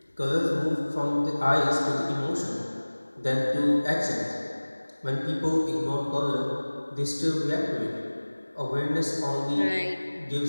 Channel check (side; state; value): both; inverted; correlation -1.00